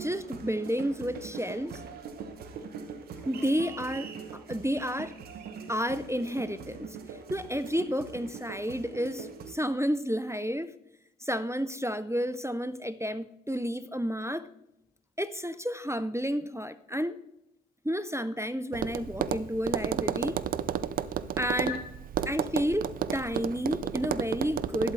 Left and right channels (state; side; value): normal; both; correlation 0.71